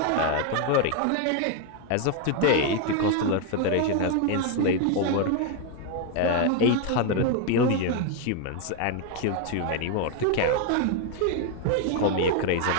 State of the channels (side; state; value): both; different; correlation 0.01